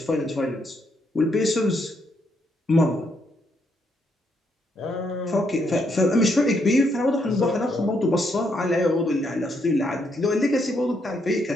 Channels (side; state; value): both; normal; correlation 0.76